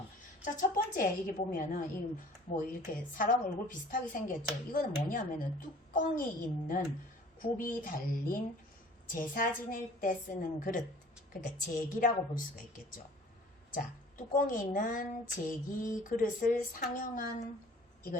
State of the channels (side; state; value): both; normal; correlation 0.49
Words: 자, 첫 번째 이게 보면은 뭐 이렇게 사람 얼굴 비슷하게 생겼죠. 이거는 뭐냐면은 뚜껑이 있는 굽이 달린 제사 지낼 때 쓰는 그릇, 그러니까 제기라고 볼 수가 있겠죠. 자, 뚜껑이 있는 제기 그릇을 상형한